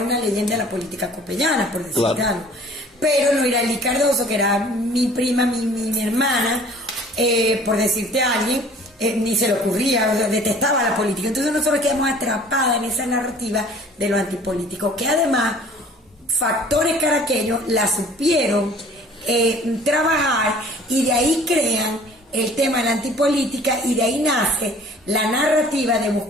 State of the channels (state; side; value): normal; both; correlation 0.50